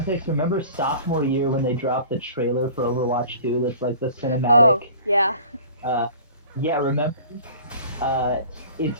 remember sophomore year when they dropped the trailer for Overwatch 2? That's like the cinematic. Oh, yeah. Yeah, remember? Uh, it's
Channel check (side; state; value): both; inverted; correlation -0.45